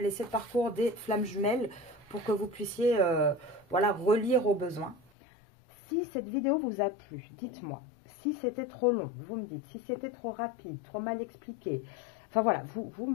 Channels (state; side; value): drops out; right; at 5.1 s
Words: 7 parcours des flammes jumelles pour que vous puissiez relire au besoin. Si cette vidéo vous a plu, dites-moi. Si c'était trop long, vous me dites. Si c'était trop rapide, trop mal expliqué. Enfin voilà, vous